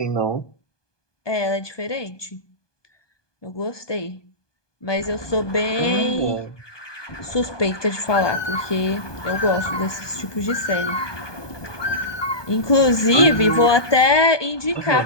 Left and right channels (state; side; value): late; right; 1.2 ms